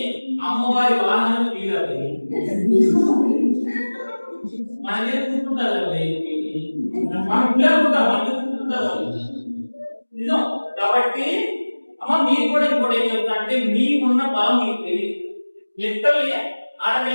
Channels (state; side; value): inverted; both; correlation -1.00